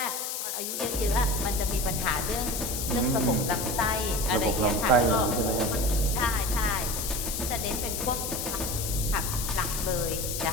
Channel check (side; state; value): left; noise; hiss, 3 dB below the sound